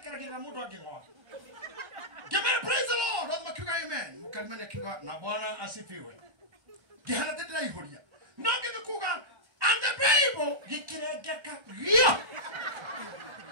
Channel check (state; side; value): late; left; 1.3 ms